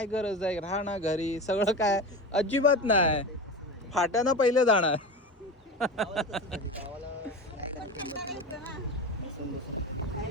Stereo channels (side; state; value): both; normal; correlation 0.26